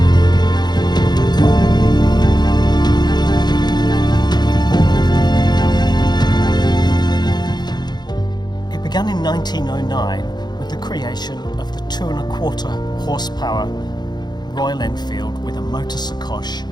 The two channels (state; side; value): late; right; 0.21 ms